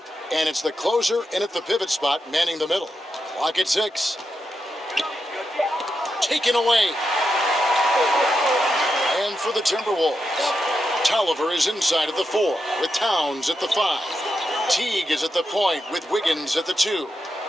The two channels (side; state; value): both; normal; correlation 0.86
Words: and it's the closer in at the pivot spot, manning the middle. Clock at 6. Taken away. And for the Timberwolves, Tolliver is inside at the 4 with Towns at the 5. Teague is at the point with Wiggins at the 2.